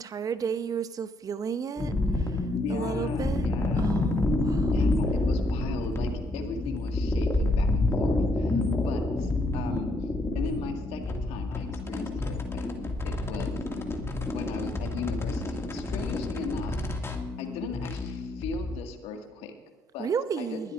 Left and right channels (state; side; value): normal; both; correlation 0.72